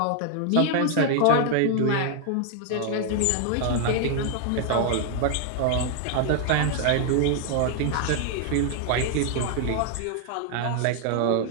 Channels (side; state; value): both; different; correlation 0.00